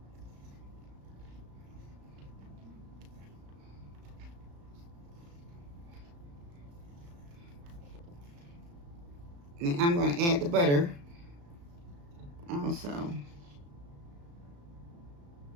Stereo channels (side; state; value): left; late; 35 ms